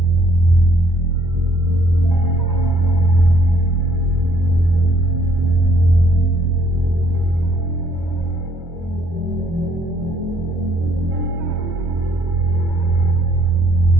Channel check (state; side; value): late; left; 1.1 ms